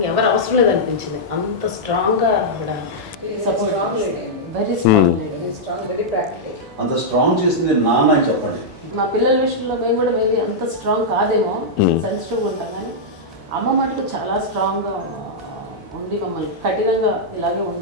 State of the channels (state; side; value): normal; both; correlation -0.08